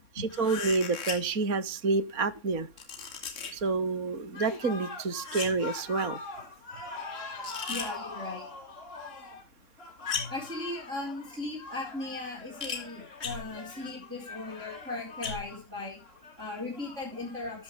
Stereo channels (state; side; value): late; left; 3.6 ms